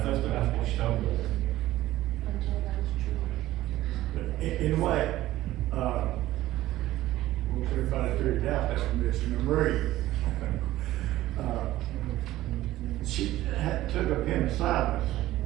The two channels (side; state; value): left; quieter; 15.5 dB